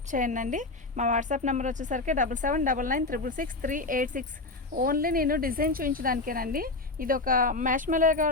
చేయండి. మా వాట్సాప్ నెంబర్ వచ్చేసరికి 7799666386. ఓన్లీ నేను డిజైన్ చూపించడానికేనండి. ఇది ఒక మ్యాష్మెలో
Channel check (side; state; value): right; quieter; 3.2 dB